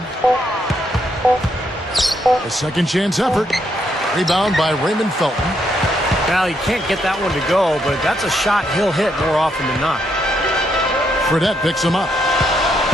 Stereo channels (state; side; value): normal; both; correlation 0.76